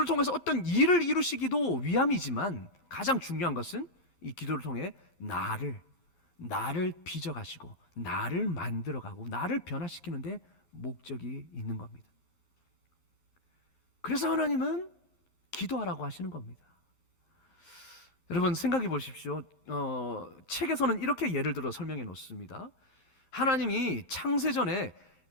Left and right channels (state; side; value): late; right; 12 ms